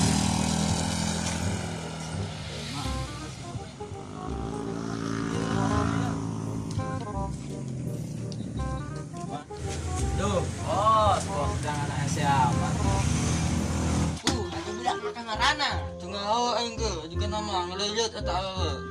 Tuh, bos jangan anak siapa? Ada budak makan ngarana. Tengah awak enggak juga nama ngelilit atau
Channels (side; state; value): both; identical; correlation 1.00